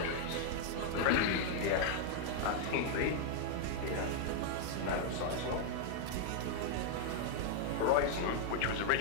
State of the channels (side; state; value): both; different; correlation -0.01